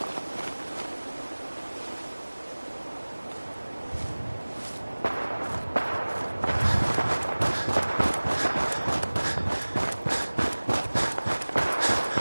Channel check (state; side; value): inverted; both; correlation -1.00